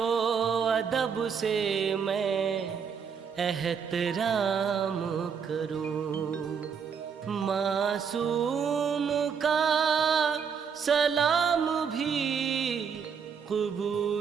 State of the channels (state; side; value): quieter; left; 6.6 dB